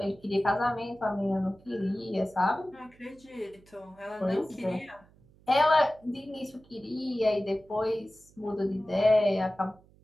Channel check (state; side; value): noise; right; hum, 28 dB below the sound